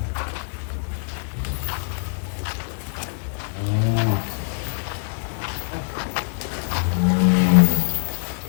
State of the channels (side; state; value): right; silent; digital silence